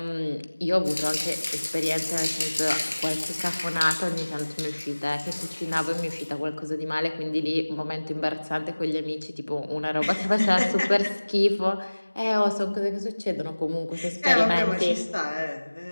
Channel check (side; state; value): both; inverted; correlation -1.00